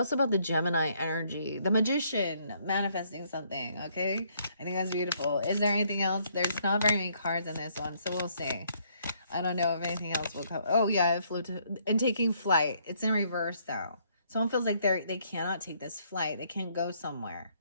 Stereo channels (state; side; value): inverted; both; correlation -0.69